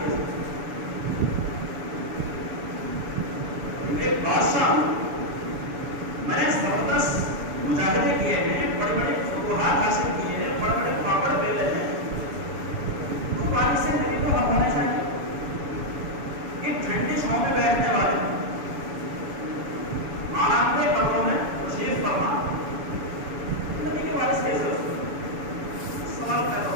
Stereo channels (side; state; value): left; late; 7.0 ms